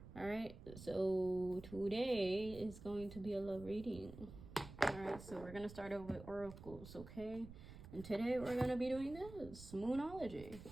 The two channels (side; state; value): right; noise; rumble, 14 dB below the sound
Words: All right, so today is going to be a love reading. All right, so we're gonna start over with oracles, okay? And today we're gonna be doing this Moonology.